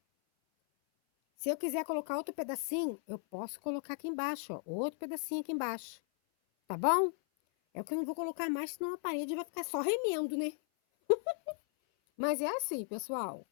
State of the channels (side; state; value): right; silent; 54 dB below the other